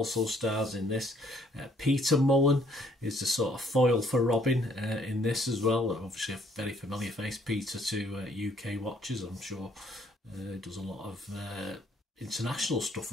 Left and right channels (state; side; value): normal; both; correlation 0.64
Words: stars in this. Peter Mullen is the sort of foil for Robin in this as well. Obviously a very familiar face, Peter, to UK watchers, I'm sure. Does a lot of international stuff